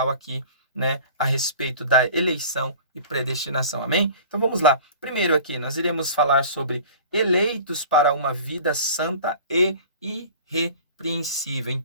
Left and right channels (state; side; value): inverted; both; correlation -0.42